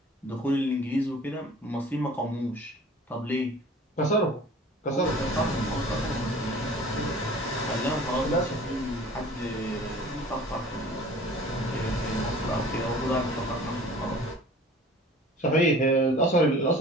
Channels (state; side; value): normal; both; correlation 0.46